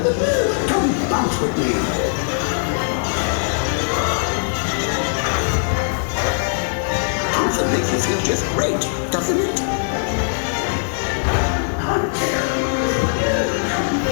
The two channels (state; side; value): silent; right; digital silence